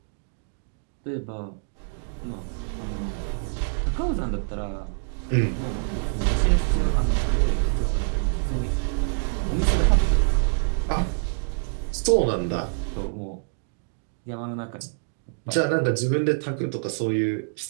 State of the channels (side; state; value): left; silent; digital silence